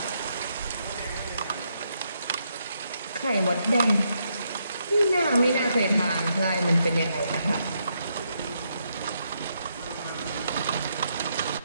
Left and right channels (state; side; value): inverted; both; correlation -0.78